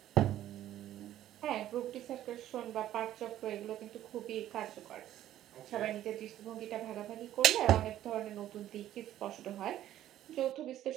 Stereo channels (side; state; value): left; quieter; 12.6 dB